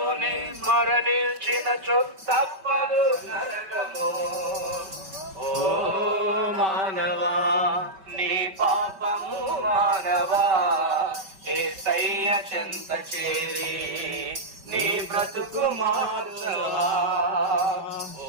మరణించినచో తప్పదు నరకము. ఓ మానవా నీ పాపము మానవా, యేసయ్య చెంత చేరి నీ బ్రతుకు మార్చవా. ఓ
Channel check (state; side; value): late; left; 5.2 ms